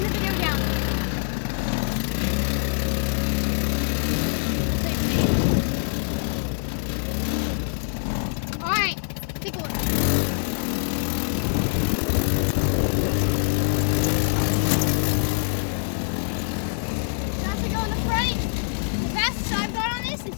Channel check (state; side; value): silent; right; 62 dB below the other